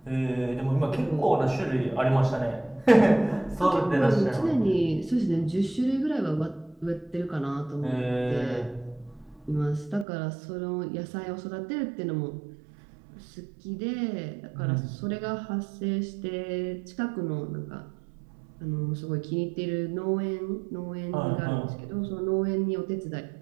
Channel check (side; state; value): left; drops out; at 10.1 s